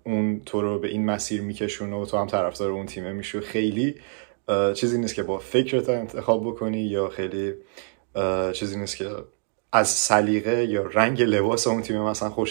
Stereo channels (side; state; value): left; silent; digital silence